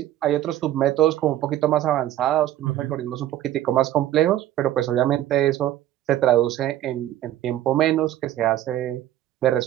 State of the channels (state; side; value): quieter; left; 13.0 dB